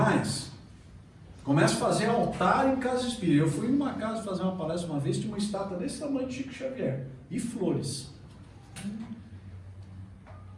Começa a fazer altar em casa espírita. Eu fui em uma casa fazer uma palestra uma vez, tinha uma estátua desse tamanho de Chico Xavier. E flores.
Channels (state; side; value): identical; both; correlation 1.00